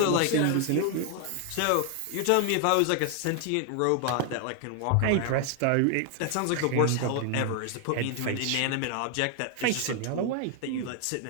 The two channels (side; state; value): both; different; correlation 0.00